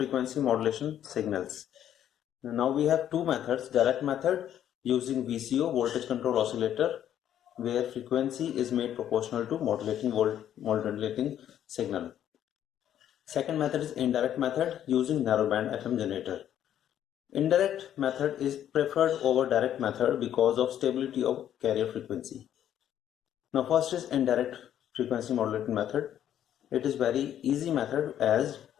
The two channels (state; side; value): quieter; right; 10.7 dB